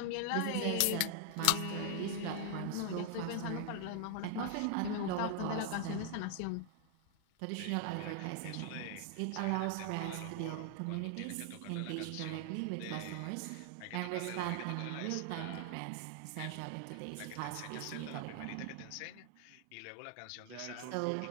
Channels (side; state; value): both; different; correlation 0.00